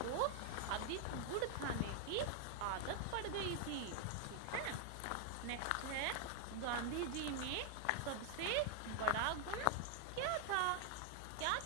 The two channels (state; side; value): different; both; correlation 0.00